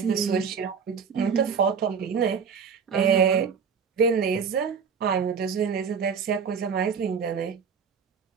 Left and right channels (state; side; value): quieter; left; 6.3 dB